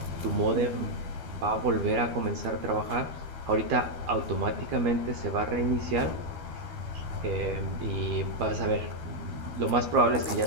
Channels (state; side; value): late; left; 12 ms